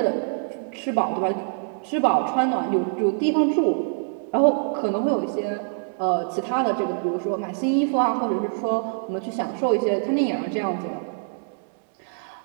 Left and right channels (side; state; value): left; silent; digital silence